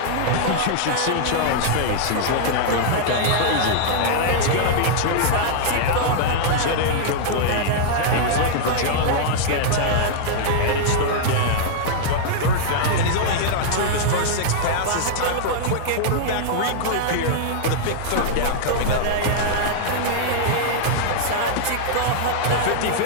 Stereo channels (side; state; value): both; different; correlation -0.01